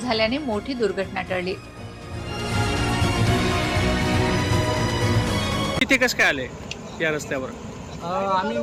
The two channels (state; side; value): identical; both; correlation 1.00